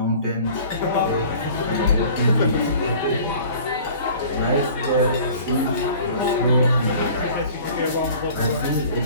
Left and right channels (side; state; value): both; inverted; correlation -0.47